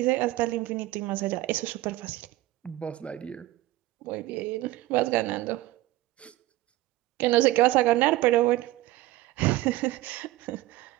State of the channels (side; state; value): left; quieter; 16.9 dB